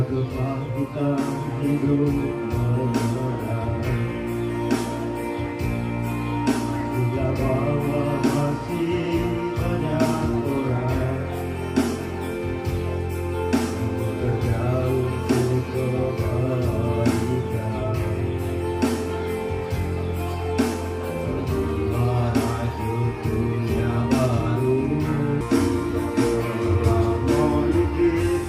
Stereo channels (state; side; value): identical; both; correlation 1.00